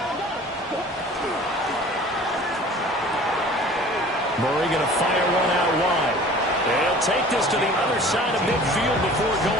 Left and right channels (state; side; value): normal; both; correlation 0.46